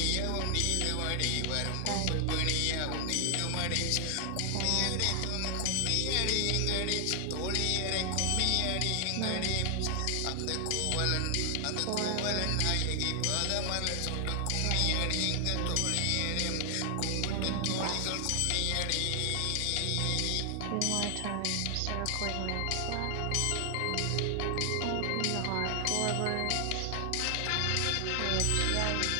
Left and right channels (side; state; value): both; different; correlation 0.00